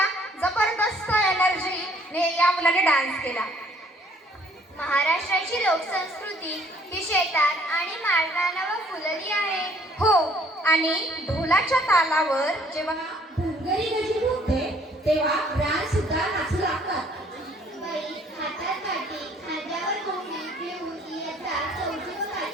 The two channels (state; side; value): normal; both; correlation 0.61